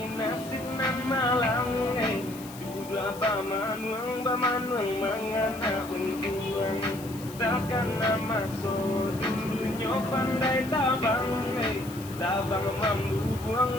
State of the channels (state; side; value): noise; left; hiss, 17 dB below the sound